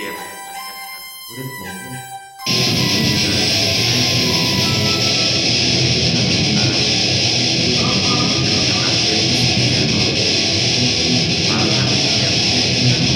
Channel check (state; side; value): identical; both; correlation 1.00